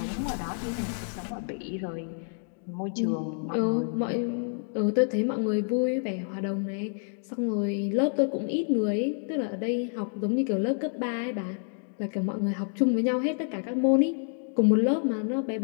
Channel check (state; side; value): silent; right; 56 dB below the other